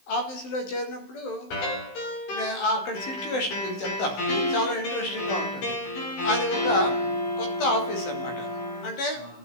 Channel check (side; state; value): right; late; 15 ms